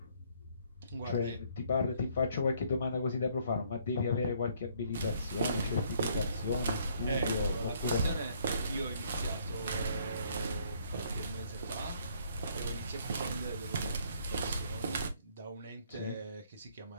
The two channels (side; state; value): both; inverted; correlation -0.64